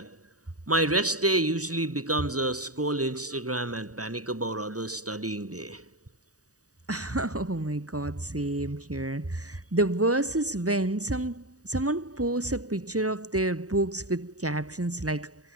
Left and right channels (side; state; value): left; late; 0.66 ms